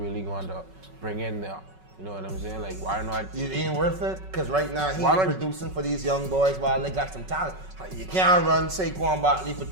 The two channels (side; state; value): left; late; 5.3 ms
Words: going to bring in there? You know what I'm saying? Like, why not? It ain't worth it because right now he's Why not- producing for these young boys while they got some talent. You can't run Saquon Barkley for